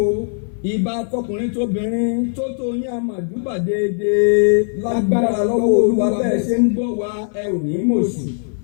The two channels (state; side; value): silent; right; 59 dB below the other